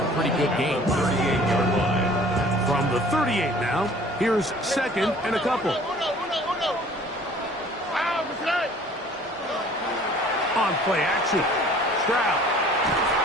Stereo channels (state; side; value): normal; both; correlation 0.51